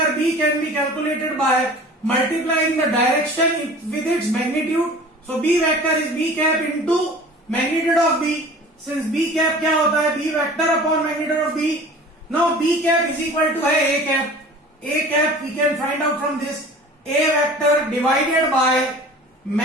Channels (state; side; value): normal; both; correlation 0.43